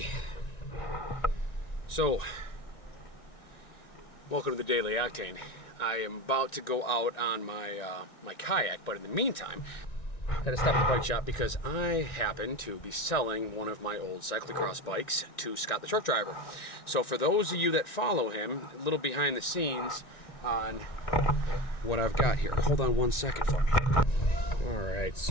so welcome to the Daily Octane. I am about to go out on my my kayak, but in the meantime, I had to stop at the bike shop because I happen to be selling one of my old cyclocross bikes to Scott the truck driver. So for those of you that follow him, a little behind the scenes on what I've got here. Hold on one second for me. All right,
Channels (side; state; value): right; late; 1.9 ms